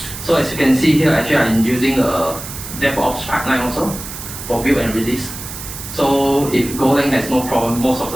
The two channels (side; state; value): right; noise; hiss, 10 dB below the sound